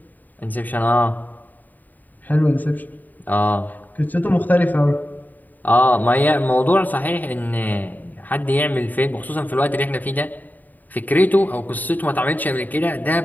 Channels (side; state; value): right; late; 0.085 ms